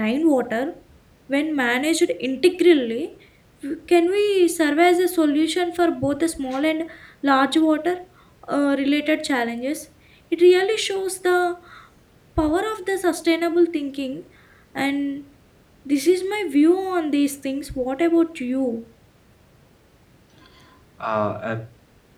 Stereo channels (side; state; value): both; identical; correlation 1.00